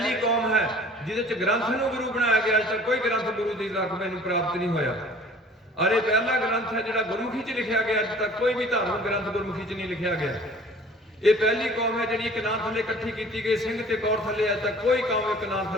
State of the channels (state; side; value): normal; both; correlation 0.49